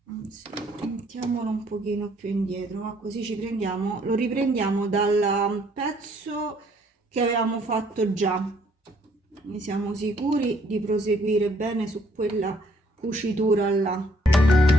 anzi mettiamolo un pochino più indietro, ma così ci prendiamo, lo riprendiamo dal pezzo che avevamo fatto già, quindi siamo sicuri di proseguire bene su quella cucitura là.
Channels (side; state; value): both; normal; correlation 0.65